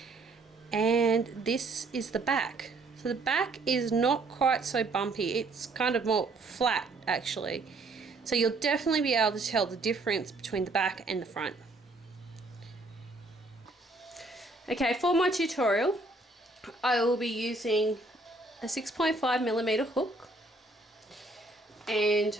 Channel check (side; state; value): left; quieter; 3.1 dB